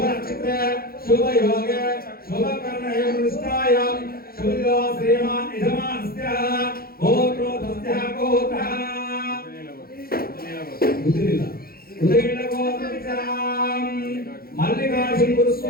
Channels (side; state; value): right; late; 0.44 ms